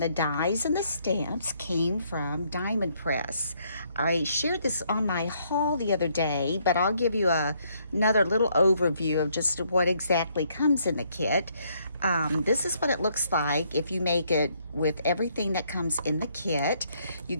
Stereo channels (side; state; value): both; inverted; correlation -0.70